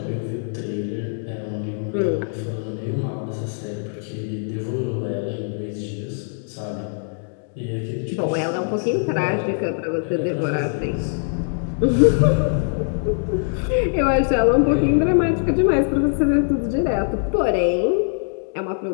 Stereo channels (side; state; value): right; silent; digital silence